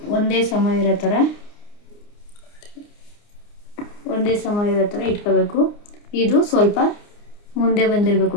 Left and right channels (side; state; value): right; late; 29 ms